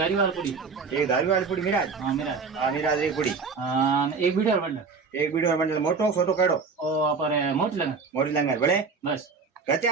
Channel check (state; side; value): quieter; left; 4.9 dB